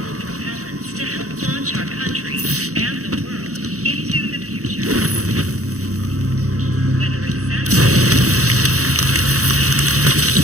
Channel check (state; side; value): late; left; 0.65 ms